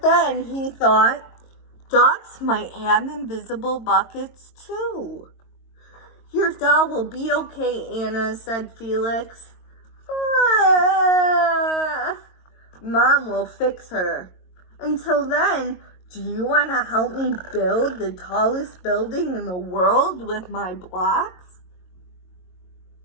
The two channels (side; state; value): right; late; 22 ms